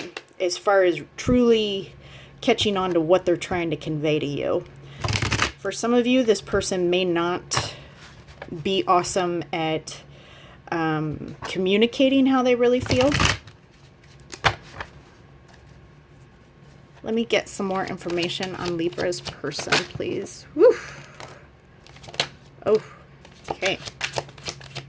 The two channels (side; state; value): both; identical; correlation 1.00